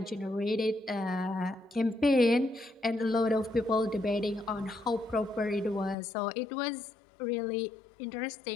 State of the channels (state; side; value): drops out; right; at 6.0 s